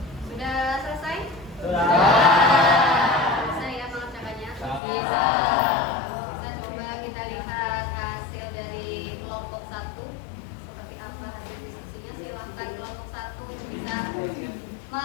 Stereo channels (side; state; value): right; drops out; at 4.8 s